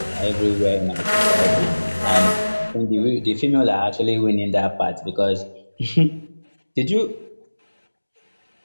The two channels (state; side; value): inverted; both; correlation -1.00